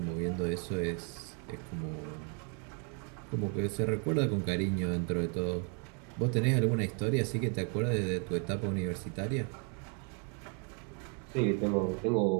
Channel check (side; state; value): left; quieter; 38.8 dB